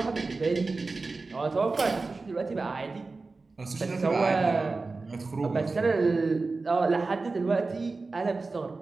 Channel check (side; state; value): left; quieter; 3.8 dB